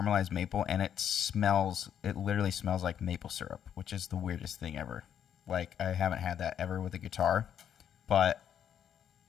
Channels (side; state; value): right; quieter; 9.1 dB